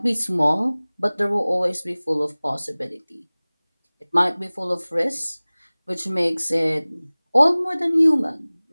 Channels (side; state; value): both; inverted; correlation -1.00